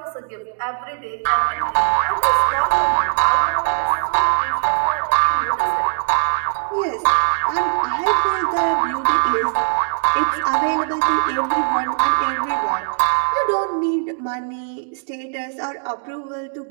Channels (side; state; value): left; silent; digital silence